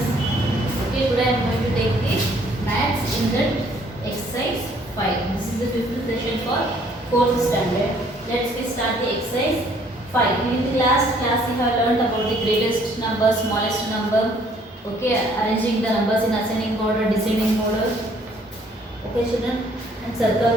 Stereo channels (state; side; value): normal; both; correlation 0.62